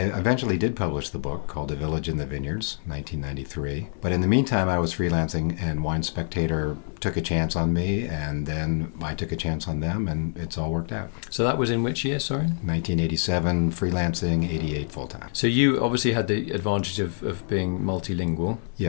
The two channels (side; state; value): right; silent; 61 dB below the other